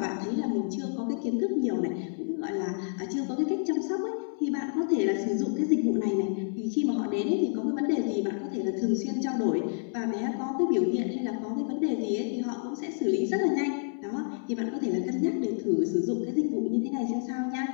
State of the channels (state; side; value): silent; right; 59 dB below the other